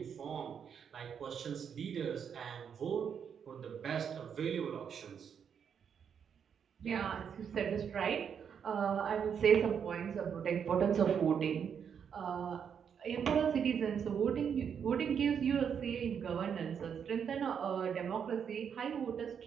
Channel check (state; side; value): quieter; left; 7.5 dB